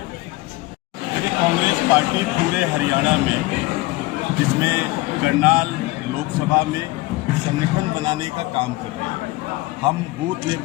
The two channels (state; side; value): quieter; right; 20.5 dB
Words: देखिए कांग्रेस पार्टी पूरे हरियाणा में, जिसमें करनाल लोकसभा में संगठन बनाने का काम कर रही है। हम बूथ